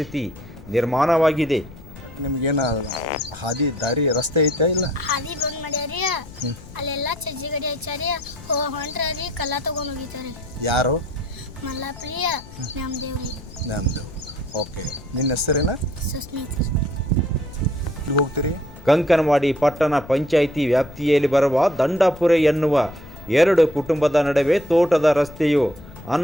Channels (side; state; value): left; noise; rumble, 18 dB below the sound